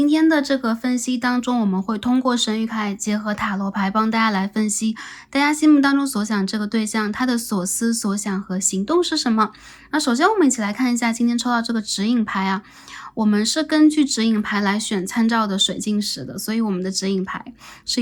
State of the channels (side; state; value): both; identical; correlation 1.00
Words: 天的这个分析当中，我们会通过神谕卡结合塔罗牌帮大家来分析大家心目当中所想这个对象他的所思所想和行动是什么。那首先我们一起来看一下今天抽到这个指引牌啊，我们是根据指引牌来选参照的水晶石的，所以我们的指引牌